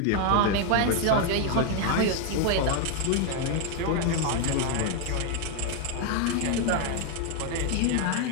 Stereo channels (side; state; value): both; different; correlation 0.00